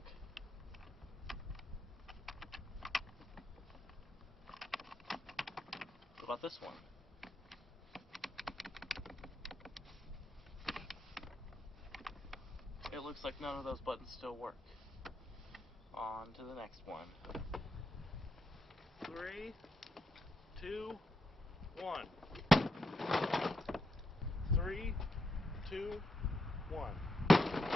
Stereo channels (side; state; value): both; normal; correlation 0.82